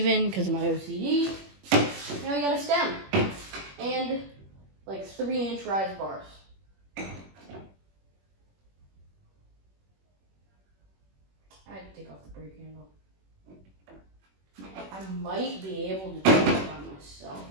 because of my OCD. Now we got a stem. And 3-inch rise bars. I had to take off the brake handle. I might be able to do it by myself.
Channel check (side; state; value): left; late; 21 ms